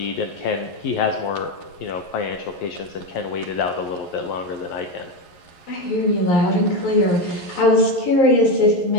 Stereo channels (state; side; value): late; right; 11 ms